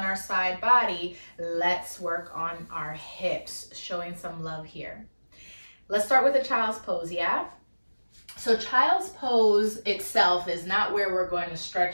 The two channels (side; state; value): both; inverted; correlation -1.00